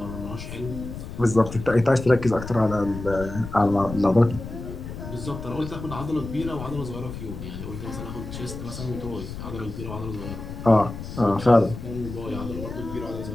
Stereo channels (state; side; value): noise; left; rumble, 9 dB below the sound